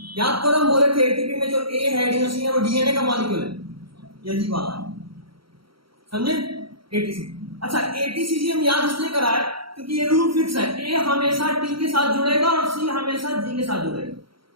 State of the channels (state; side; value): late; left; 0.74 ms